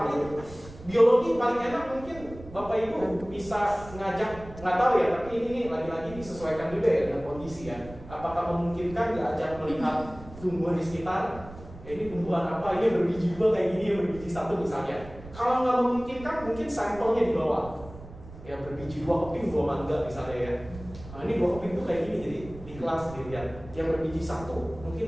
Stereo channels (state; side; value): noise; right; rumble, 16 dB below the sound